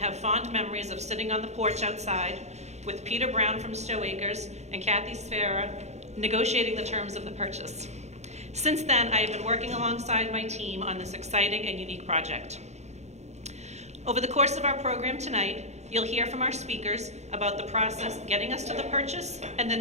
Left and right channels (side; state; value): left; late; 0.32 ms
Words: fond memories of sitting on the porch outside with Peter Brown from Stow Acres and Kathy Sfera negotiating the terms of the purchase. Since then, I have been working alongside my team on this exciting and unique project. Over the course of our program tonight, you'll hear from our speakers about the process getting us to the purchase and